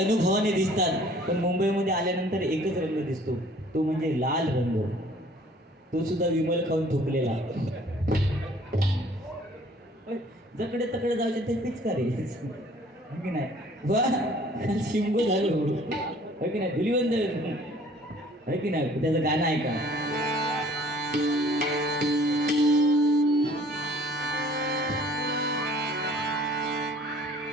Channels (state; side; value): normal; both; correlation 0.54